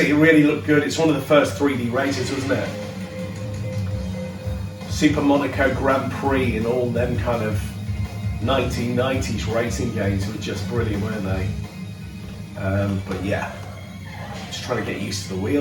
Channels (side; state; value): both; identical; correlation 1.00